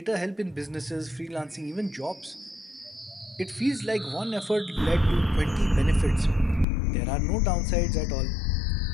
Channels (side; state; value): right; drops out; at 6.7 s